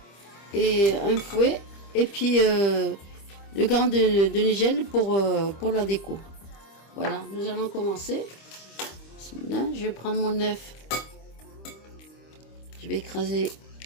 et un fouet, et puis le grain de nigel pour la déco. Voilà, nous allons commencer. Là, je vais prendre mon œuf. Je vais écraser.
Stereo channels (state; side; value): late; right; 25 ms